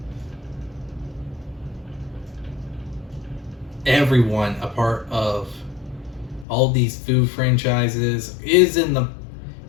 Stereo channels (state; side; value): drops out; right; at 6.5 s